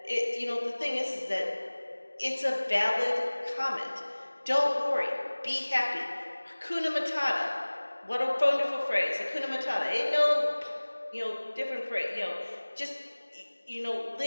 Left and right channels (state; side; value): inverted; both; correlation -1.00